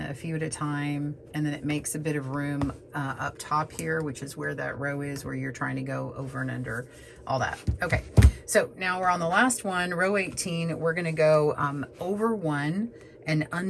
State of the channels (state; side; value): identical; both; correlation 1.00